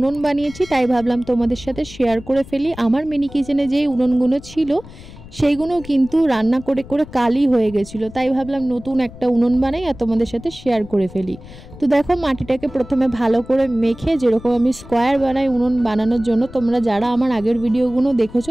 বানিয়েছি, তাই ভাবলাম তোমাদের সাথে শেয়ার করে ফেলি। আমার মিনি কিচেনে যেই উনুনগুলো ছিল সেইগুলো কিন্তু রান্না করে করে কালি হয়ে গেছিলো, তাই ভাবলাম নতুন একটা উনুন বানাই আর তোমাদের সাথে শেয়ার করে ফেলি। তো দেখো, মাটিটাকে প্রথমে ভালো করে মেখে, যেরকম আমি স্কোয়ার বানাই উনুন বানানোর জন্য, তোমরা যারা আমার আগের ভিডিওগুলো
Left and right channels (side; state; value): left; noise; rumble, 17 dB below the sound